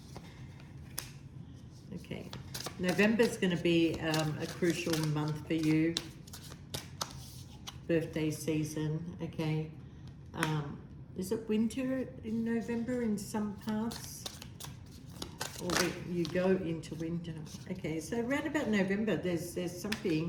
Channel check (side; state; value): both; identical; correlation 1.00